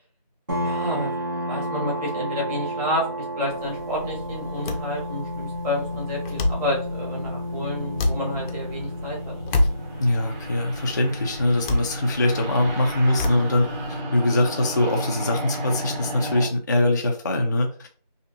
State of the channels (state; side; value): inverted; both; correlation -0.70